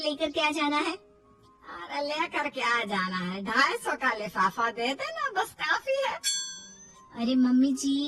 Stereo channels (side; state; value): both; identical; correlation 1.00